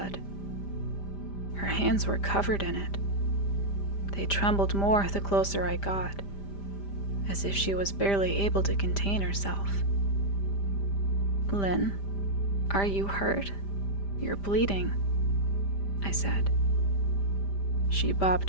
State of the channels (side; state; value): right; late; 5.0 ms